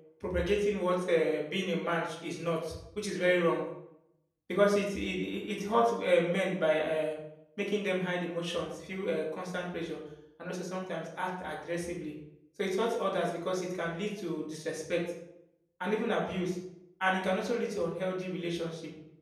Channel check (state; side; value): identical; both; correlation 1.00